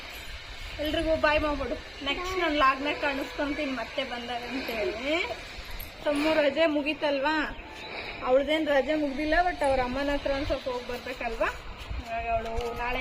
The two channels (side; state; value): both; identical; correlation 1.00